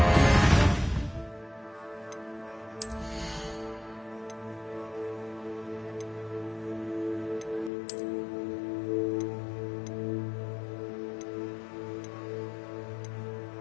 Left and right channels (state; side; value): drops out; right; at 7.7 s